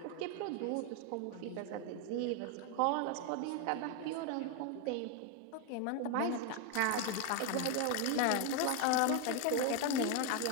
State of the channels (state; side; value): different; both; correlation 0.01